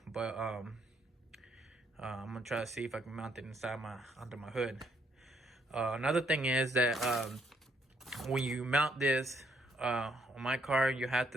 But I'm gonna try to see if I can mount it under my hood. Another thing is that when you mount this on my car, you have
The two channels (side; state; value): both; normal; correlation 0.71